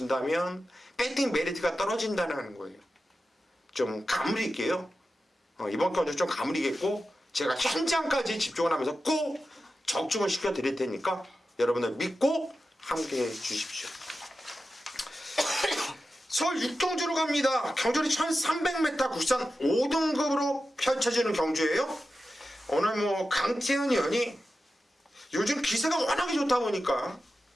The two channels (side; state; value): both; normal; correlation 0.92